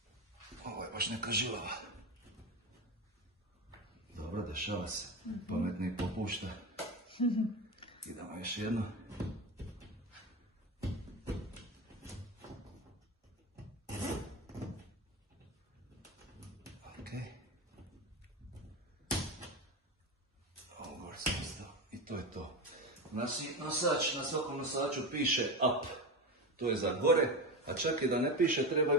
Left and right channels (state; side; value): normal; both; correlation 0.20